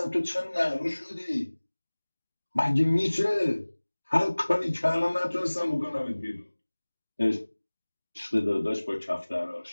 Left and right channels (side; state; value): both; inverted; correlation -1.00